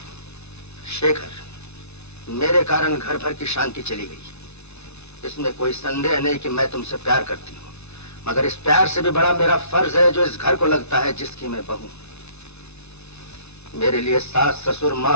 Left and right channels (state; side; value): late; right; 0.81 ms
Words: शेखर, मेरे कारण घर भर की शांति चली गई। इसमें कोई संदेह नहीं कि मैं तुमसे प्यार करती हूँ, मगर इस प्यार से भी बड़ा मेरा फर्ज है जो इस घर को लगता है जिसकी मैं बहू। मेरे लिए सास ससुर